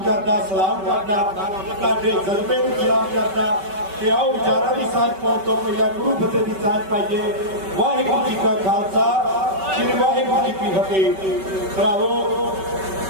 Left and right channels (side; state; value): left; late; 5.2 ms